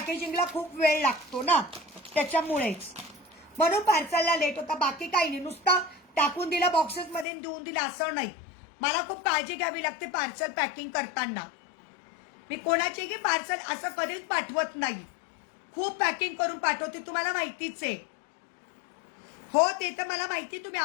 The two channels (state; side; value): drops out; right; at 7.2 s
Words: खूप वेळ लागतो ना त्याच्यामुळेच. म्हणून पार्सलला लेट होता. बाकी काही नाही. नुसतं टाकून दिलं बॉक्सेसमध्ये देऊन दिलं असं नाही. मला खूप काळजी घ्यावी लागते पार्सल पॅकिंग करताना. मी कोणाचेही पार्सल असं कधीच पाठवत नाही. खूप पॅकिंग करून पाठवते, तुम्हाला माहितीच आहे. हो ते तर मला माहिती. तुम्ही